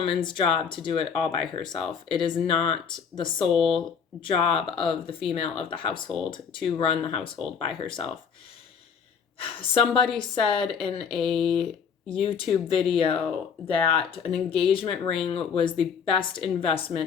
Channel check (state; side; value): quieter; right; 6.6 dB